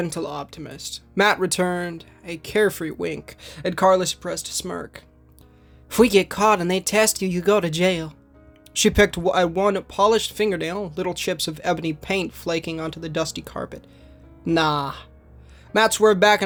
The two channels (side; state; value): both; identical; correlation 1.00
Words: optimist, Matt returned a carefree wink at Carla's suppressed smirk. If we get caught and they test you, you go to jail. She picked at one polished fingernail, little chips of ebony paint flaking onto the dusty carpet. Nah. Matt swerved back